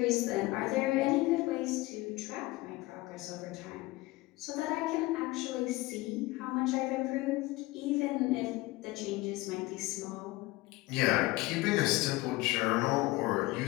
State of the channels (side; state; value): right; quieter; 20.2 dB